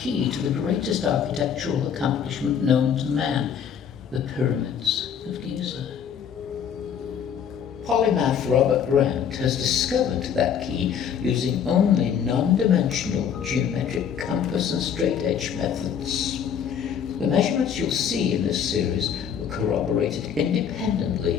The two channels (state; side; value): quieter; right; 8.0 dB